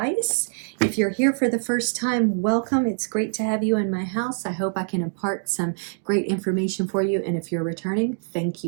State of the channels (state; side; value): silent; left; digital silence